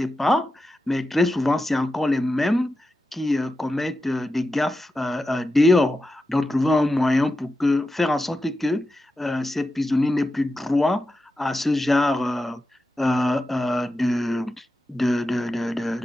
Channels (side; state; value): both; normal; correlation 0.91